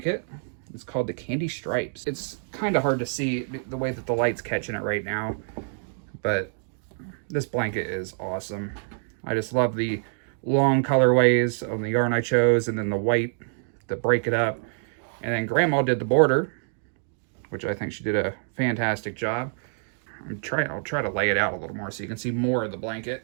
It's called the Candy Stripes. It's kind of hard to see the way that the light's catching it right now, but this blanket is awesome. I just love the long colorways of the yarn I chose, and then the white to break it up. And then Grandma did the border, which I think she did a fantastic job. I'll try to lay it out a little more so you can see more of the blanket.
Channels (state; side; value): silent; left; digital silence